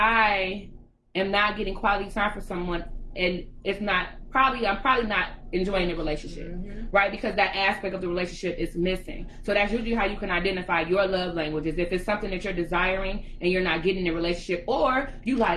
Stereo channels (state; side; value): identical; both; correlation 1.00